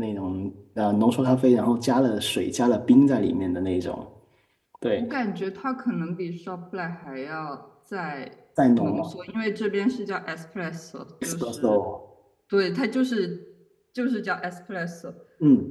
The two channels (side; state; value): both; identical; correlation 1.00